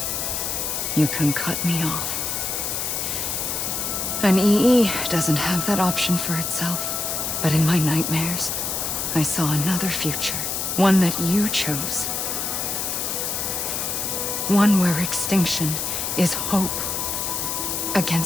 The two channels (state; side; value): noise; left; hiss, 1 dB below the sound